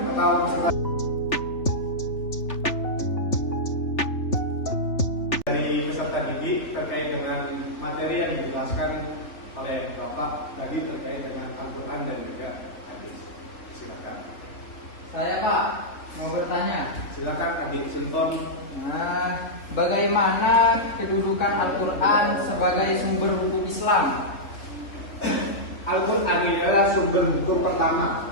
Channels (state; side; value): late; right; 3.4 ms